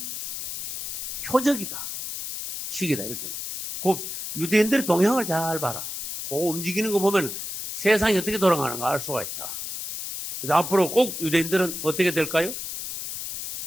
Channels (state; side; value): noise; left; hiss, 5 dB below the sound